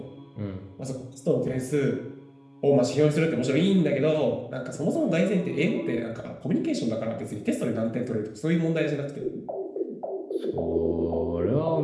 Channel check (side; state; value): both; identical; correlation 1.00